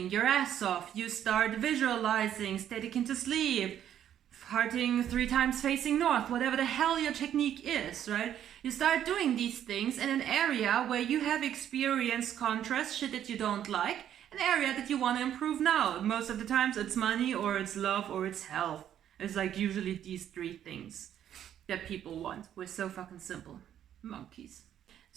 your ass off. You start visualizing, static into sleep, farting 3 times facing north, whatever the hell your technique is, right? You start doing these things in an area where you have experienced contrast, shit that you don't like, an area that you want to improve now. Most of the times it's money or it's love or it's health. It's like usually these 3 things that people want. We're so fucking simple. Monkeys.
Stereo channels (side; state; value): left; quieter; 10.3 dB